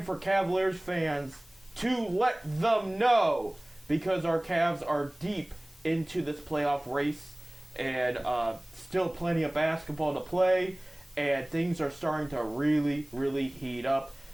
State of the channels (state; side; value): noise; left; hiss, 27 dB below the sound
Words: for Cavaliers fans to let them know, because our Cavs are deep into this playoff race and still plenty of basketball to play, and things are starting to really, really heat up.